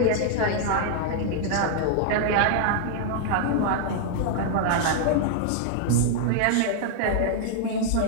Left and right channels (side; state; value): both; different; correlation 0.00